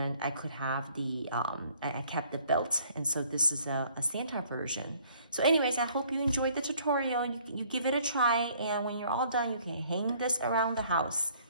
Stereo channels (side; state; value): both; inverted; correlation -0.59